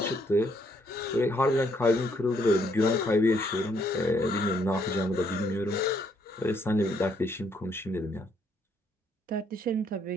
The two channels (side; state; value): both; normal; correlation 0.70